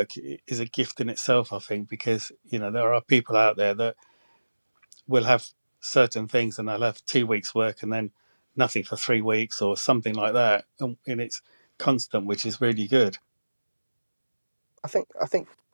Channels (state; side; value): inverted; both; correlation -1.00